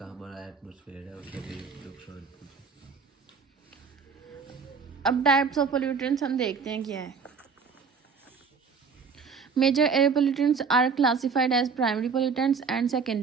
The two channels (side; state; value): left; quieter; 5.5 dB